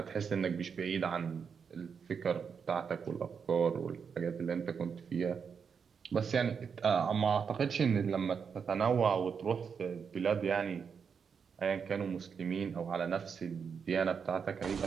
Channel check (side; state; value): left; quieter; 6.4 dB